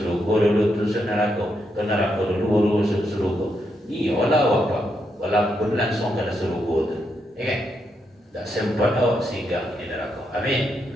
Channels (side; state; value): both; normal; correlation 0.81